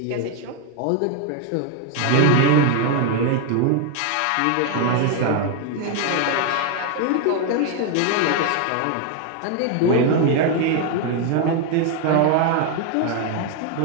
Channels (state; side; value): different; both; correlation 0.01